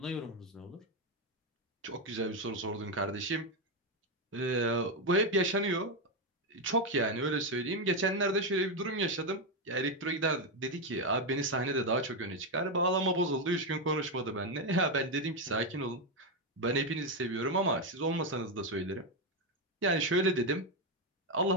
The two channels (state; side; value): normal; both; correlation 0.06